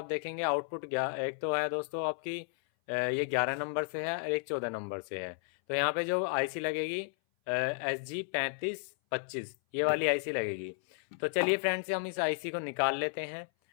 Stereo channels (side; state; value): right; silent; 56 dB below the other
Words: देखेंगे आउटपुट एक तो है दोस्तों आपकी ये 11 नंबर से है और एक 14 नंबर से है। तो यहाँ पे जो आईसी लगेगी SG 3525, ये वाली आईसी लगेगी। तो चलिए फ्रेंड्स, हम इस आईसी को निकाल लेते हैं